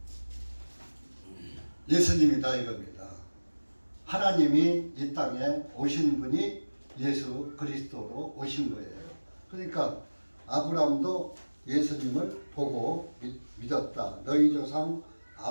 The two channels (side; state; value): both; inverted; correlation -1.00